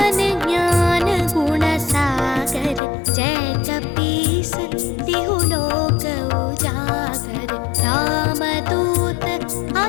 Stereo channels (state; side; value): drops out; right; at 2.8 s